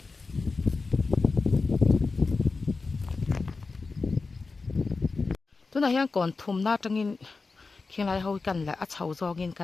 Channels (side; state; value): right; quieter; 4.1 dB